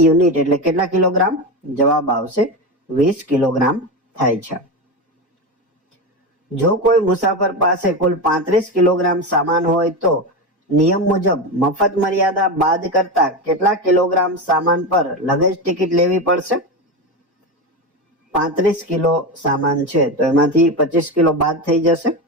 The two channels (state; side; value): normal; both; correlation 0.18